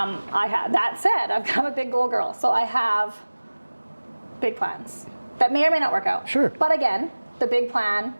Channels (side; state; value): both; inverted; correlation -1.00